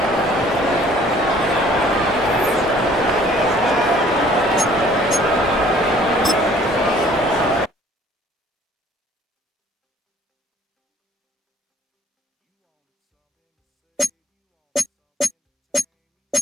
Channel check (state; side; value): normal; both; correlation 0.55